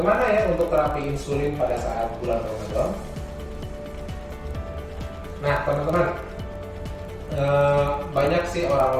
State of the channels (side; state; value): both; identical; correlation 1.00